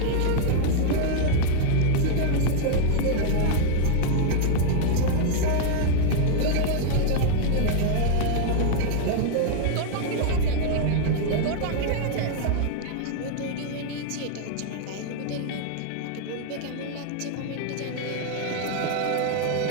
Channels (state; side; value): different; both; correlation 0.00